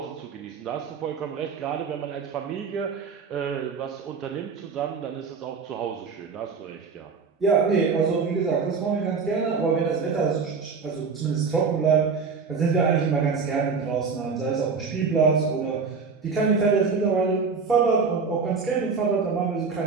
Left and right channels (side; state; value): left; quieter; 5.1 dB